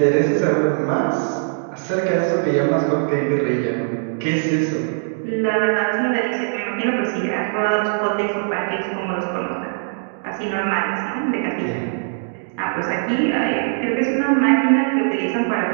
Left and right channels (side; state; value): left; silent; digital silence